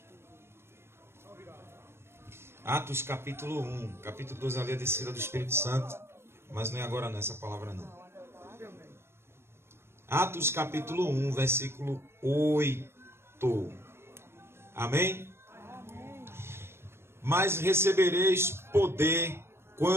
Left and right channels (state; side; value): late; left; 0.12 ms